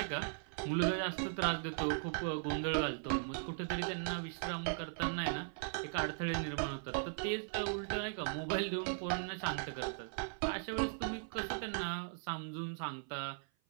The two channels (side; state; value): left; silent; 52 dB below the other